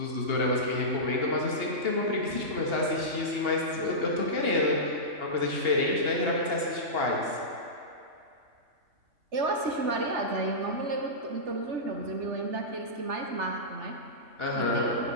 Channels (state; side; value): late; left; 2.8 ms